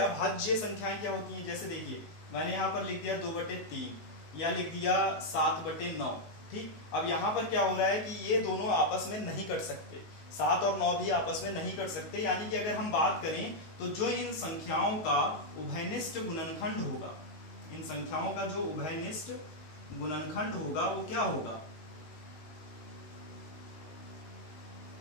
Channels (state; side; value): late; right; 19 ms